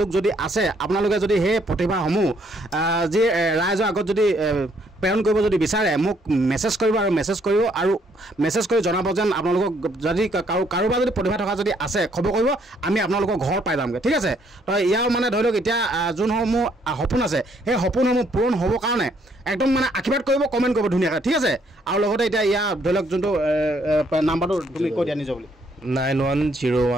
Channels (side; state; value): both; normal; correlation 0.68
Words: লোক যদি আছে আপোনালোকে যদি সেই প্ৰতিভাসমূহ যি ৰাইজৰ আগত যদি প্ৰেৰণ কৰিব যদি বিচাৰে মোক মেছেজ কৰিব আৰু মেছেজ কৰি জনাব যেন আপোনালোকক যদি কাৰোবাৰ যদি প্ৰতিভা থকা যদি আছে খবৰ কৰিব আমি আপোনালোকৰ ঘৰ পাই যামগৈ ঠিক আছে তো ইয়াৰ মানে ধৰি লওক এতিয়া যোনসমূহ সপোন আছে সেই সপোনসমূহ পূৰণ হ'বৰ কাৰণে একদম মানে আশীৰ্বাদ কৰিব কমেণ্ট কৰিব ধুনীয়াকৈ ঠিক আছে আৰু লগতে এতিয়া ইয়াৰ ধৰি লওক যোনটো নাম্বাৰটো তুমি কৈ দিয়া নিজৰ বুলি